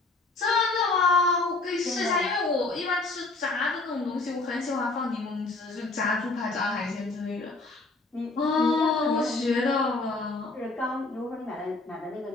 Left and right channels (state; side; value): quieter; right; 3.4 dB